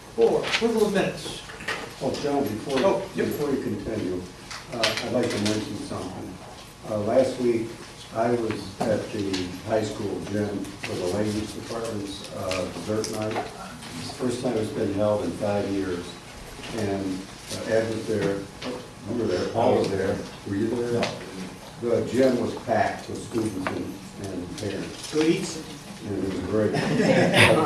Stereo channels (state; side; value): identical; both; correlation 1.00